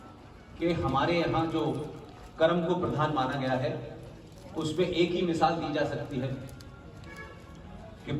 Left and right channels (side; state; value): both; identical; correlation 1.00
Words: कि हमारे यहाँ जो कर्म को प्रधान माना गया है उसमें एक ही मिसाल दी जा सकती है कि